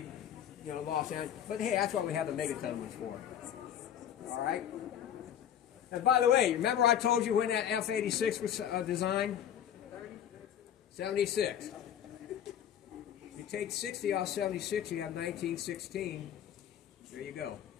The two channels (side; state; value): right; quieter; 9.8 dB